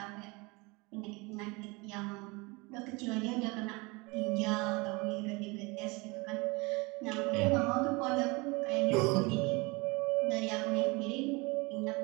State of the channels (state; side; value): quieter; left; 26.4 dB